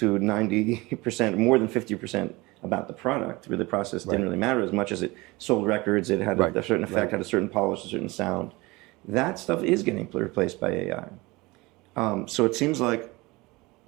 90%, more than 50% about the product, where the process didn't really matter as much as it sold records, it had a certain effect, had a certain polish, a certain sound. That stuff is getting replaced by AI. So it seems like,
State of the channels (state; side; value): quieter; left; 22.7 dB